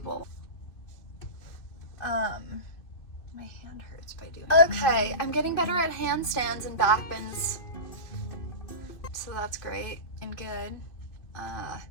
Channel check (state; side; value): late; right; 2.6 ms